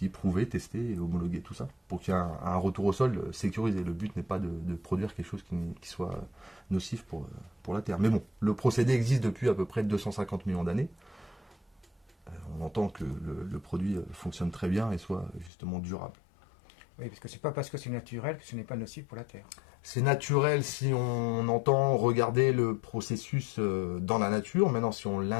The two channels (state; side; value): drops out; right; at 15.5 s